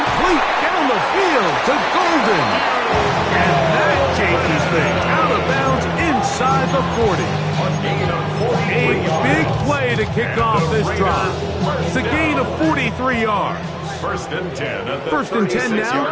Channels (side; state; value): both; identical; correlation 1.00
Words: down the field to Golden. And that changes things. Out of bounds inside the 40. A big play to kick off this drive. It's a gain of 43 yards. 1st and 10 at the 1st and 10